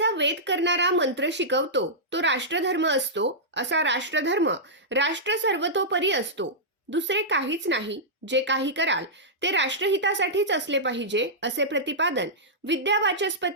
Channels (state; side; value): normal; both; correlation -0.12